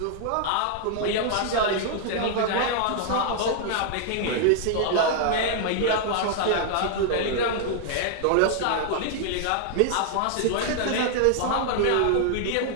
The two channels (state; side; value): different; both; correlation -0.01